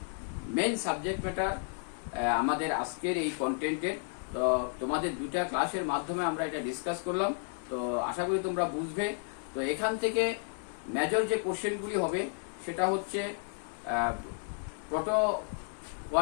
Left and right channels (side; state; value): right; silent; 56 dB below the other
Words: main subject matter আমাদের আজকের এই কন্টেন্টের। তো তোমাদের দুটা ক্লাসের মাধ্যমে আমরা এটা ডিসকাস করলাম, তো আশা করি তোমরা বুঝবে। তো এখান থেকে মেজর যে কোশ্চেনগুলি হবে সেটা হচ্ছে